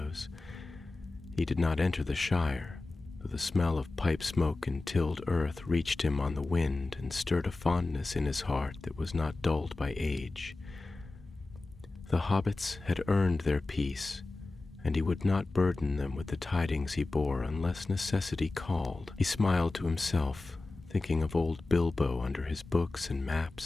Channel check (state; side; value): quieter; right; 3.2 dB